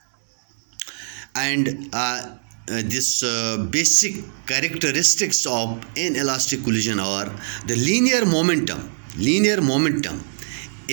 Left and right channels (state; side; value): silent; left; 62 dB below the other